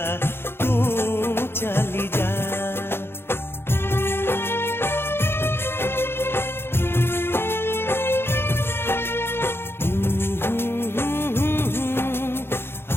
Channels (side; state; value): right; late; 0.11 ms